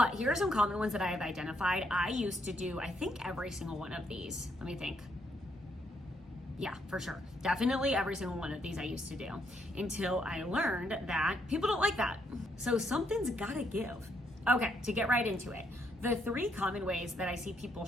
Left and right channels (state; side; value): normal; both; correlation 0.74